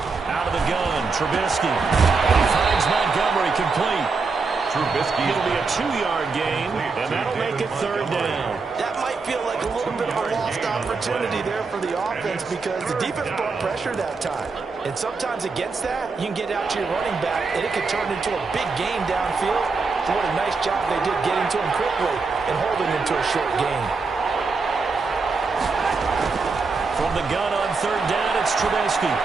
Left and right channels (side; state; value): left; quieter; 4.4 dB